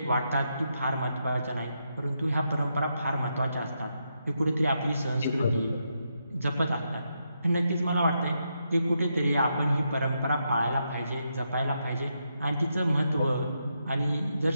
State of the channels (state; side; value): inverted; both; correlation -0.82